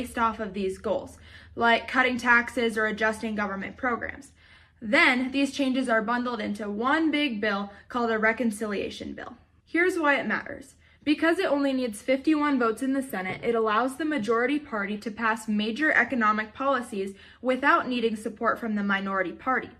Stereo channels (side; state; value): both; identical; correlation 1.00